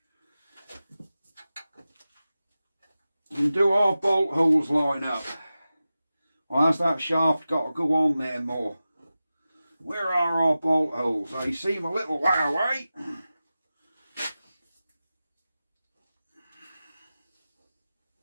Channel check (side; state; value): both; inverted; correlation -0.94